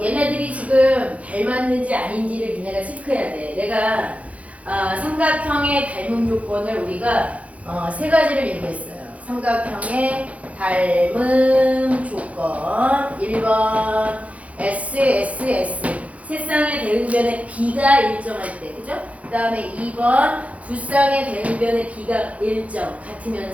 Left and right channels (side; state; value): left; late; 0.066 ms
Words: 얘네들이 지금 닮았는지 아닌지를 니네가 체크해야 돼. 내가 삼각형의 닮음 조건을 우리가 세 가지를 얘기했어요. 삼각형의 닮음 조건 1번 S, S, S 세 쌍의 대응변의 B가 일정할 때, 그죠? 그 다음에 2번 두 쌍의 대응변의 B가 일정